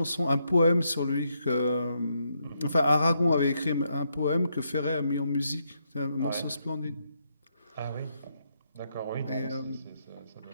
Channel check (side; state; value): both; inverted; correlation -0.79